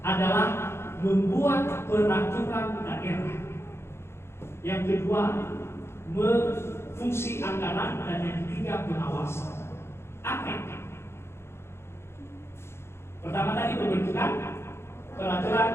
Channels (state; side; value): late; right; 0.12 ms